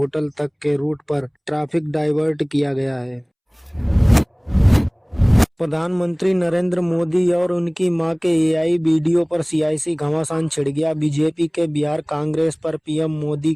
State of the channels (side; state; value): both; identical; correlation 1.00